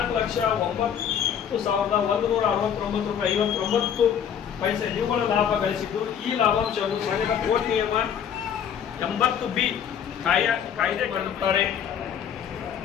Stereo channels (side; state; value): right; quieter; 8.5 dB